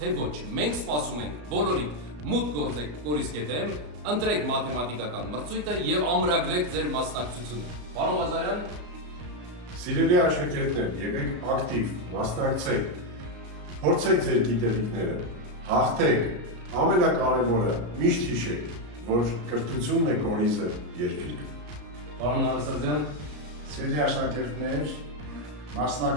ոչ, մենք սպասում ենք բոլորիդ մուտք գործեք կորիս.am, ընտրեք մաթեմատիկական մրցույթը եւ ամրագրեք ձեր մասնակցությունը։ Պարոն Ղազարյան, Սիրելի աշակերտներ, եղեք ակտիվ, մասնակցեք, փորձեք ձեր գիտելիքները, հաղթեք, ամենակարևորը միշտ հիշեք, որ կրթությունն է կորիզը երկրի։ Պարոն Նարսարդյան, Սիրելի աշակերտներ,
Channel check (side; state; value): left; late; 34 ms